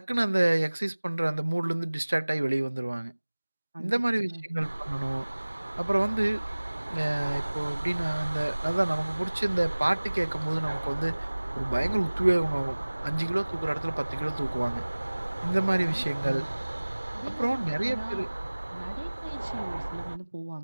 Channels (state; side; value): inverted; both; correlation -1.00